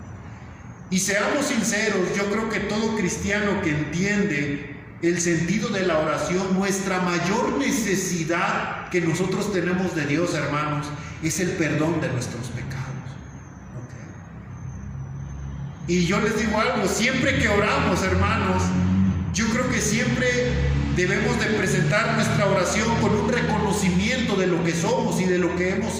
Y seamos sinceros, yo creo que todo cristiano que entiende el sentido de la oración, nuestra mayor necesidad que nosotros tenemos de Dios, hermanos, es el perdón de nuestros pecados. Y yo les digo algo, siempre que oramos, hermanos, yo creo que siempre debemos de presentar nuestra oración con un reconocimiento de lo que somos y de lo que hemos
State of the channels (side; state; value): both; identical; correlation 1.00